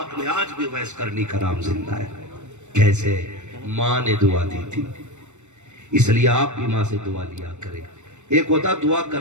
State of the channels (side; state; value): left; late; 0.84 ms